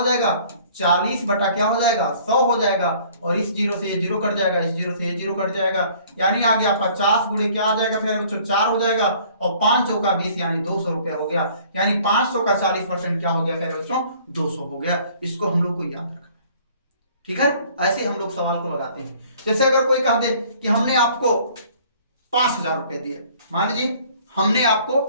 जाएगा 40 बटा क्या हो जाएगा 100 हो जाएगा, और इस जीरो से ये जीरो कट जाएगा, इस जीरो से ये जीरो कट जाएगा, यानी आ गया 50 गुणे क्या आ जाएगा प्यारे बच्चों 4 हो जाएगा, और 5 चौका 20 यानी 200 रुपया हो गया, यानी 500 का 40% क्या हो गया प्यारे बच्चों 200 हो गया। इसको हम लोग को याद रखना, ठीक है। ऐसे हम लोग सवाल को लगाते हैं। जैसे अगर कोई कह दे कि हमने आपको 5000 रुपए दिए, मान लीजिए हमने आपको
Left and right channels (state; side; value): inverted; both; correlation -0.55